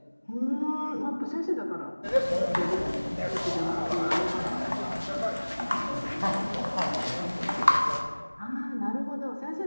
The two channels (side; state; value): both; inverted; correlation -1.00